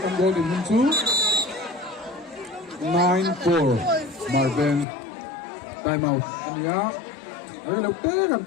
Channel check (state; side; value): drops out; right; at 4.9 s